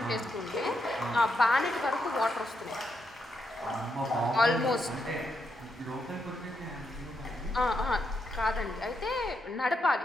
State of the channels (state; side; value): normal; both; correlation 0.81